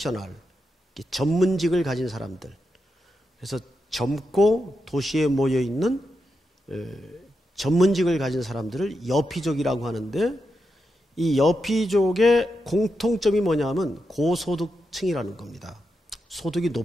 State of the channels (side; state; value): both; normal; correlation 0.86